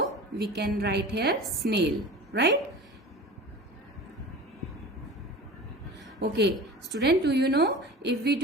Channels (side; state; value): both; normal; correlation 0.36